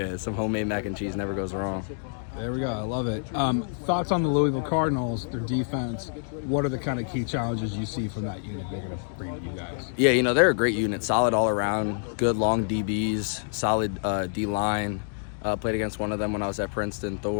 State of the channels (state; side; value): silent; right; digital silence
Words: Some homemade mac and cheese never goes wrong. There we go. I love it. Thoughts on the Louisville Cardinals, their defense? What are the kind of key challenges you see from that unit they're going to bring to you guys? Yeah, they're a great unit. Solid all around. Good long DBs. Solid D-line. Played against one of them when I was at Princeton,